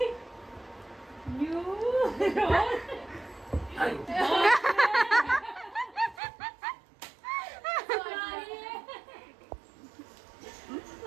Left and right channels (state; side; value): drops out; left; at 6.2 s